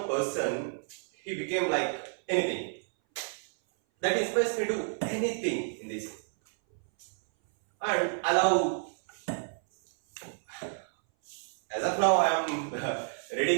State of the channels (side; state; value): left; silent; 58 dB below the other